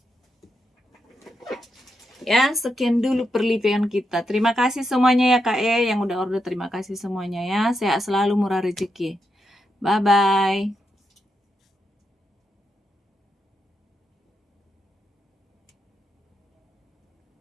Ya, sekian dulu perlipian kita. Terima kasih semuanya ya Kak yang udah order. Terima kasih semuanya ya. Sehat selalu, murah rezeki. Bye-bye.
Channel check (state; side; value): normal; both; correlation 0.84